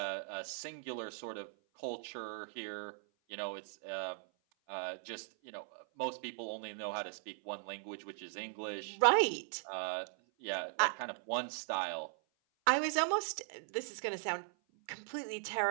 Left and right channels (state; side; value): silent; left; 52 dB below the other